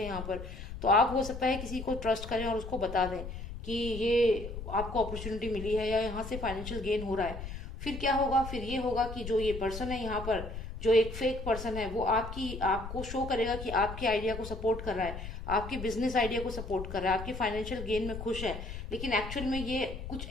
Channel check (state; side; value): noise; left; rumble, 9 dB below the sound